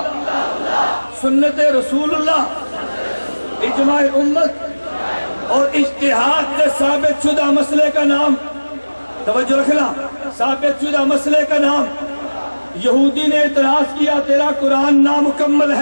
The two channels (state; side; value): inverted; both; correlation -1.00